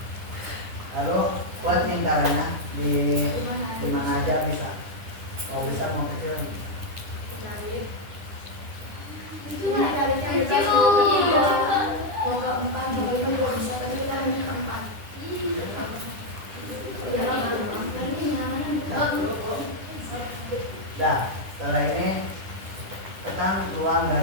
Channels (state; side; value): late; left; 9.9 ms